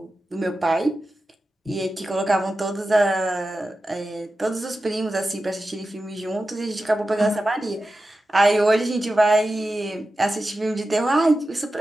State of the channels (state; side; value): normal; both; correlation 0.93